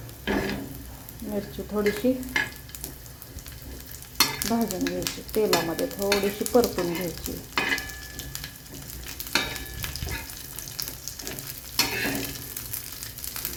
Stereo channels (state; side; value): identical; both; correlation 1.00